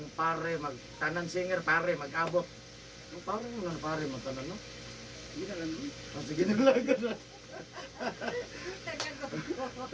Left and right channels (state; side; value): identical; both; correlation 1.00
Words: pare, magtanan singer, pare, mag-abot. Ang pare mo na pare, magtanan, no? Hindi na lang. Sige na lang.